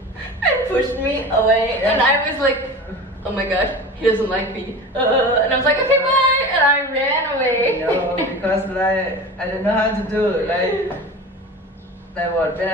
and pushed me away. And I was like, oh my gosh, he doesn't like me. And I was like, okay, bye. And I ran away. No, because like, I don't know how to do. Like what, when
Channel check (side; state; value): both; normal; correlation 0.34